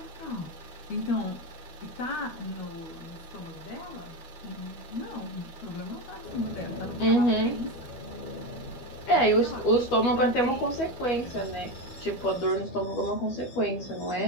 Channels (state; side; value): late; right; 12 ms